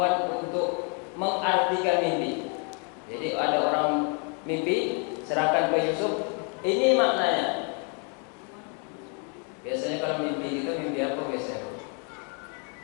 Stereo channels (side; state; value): right; quieter; 38.4 dB